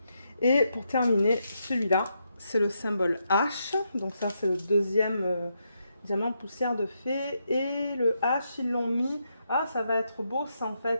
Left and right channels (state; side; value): inverted; both; correlation -0.81